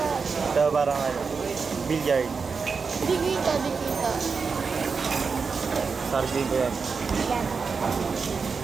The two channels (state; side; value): quieter; left; 5.1 dB